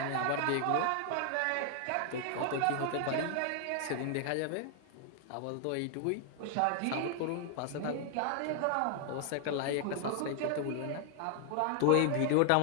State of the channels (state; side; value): different; both; correlation 0.00